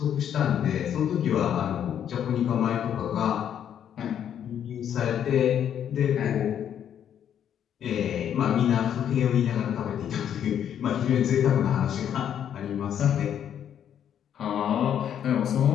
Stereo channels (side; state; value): right; quieter; 9.4 dB